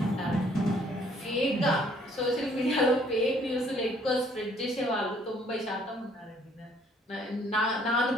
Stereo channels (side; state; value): both; normal; correlation 0.62